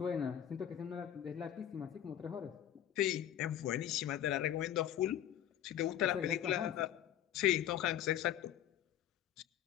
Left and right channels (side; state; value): right; quieter; 11.2 dB